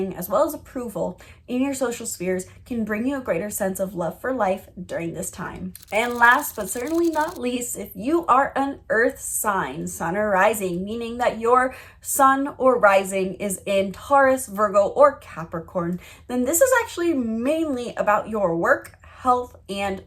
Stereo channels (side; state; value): both; identical; correlation 1.00